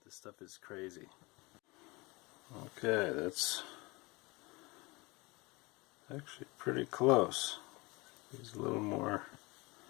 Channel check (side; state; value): right; quieter; 24.9 dB